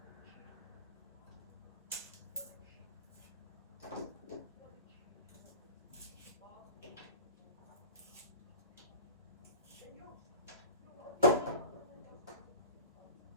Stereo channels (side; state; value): both; inverted; correlation -0.33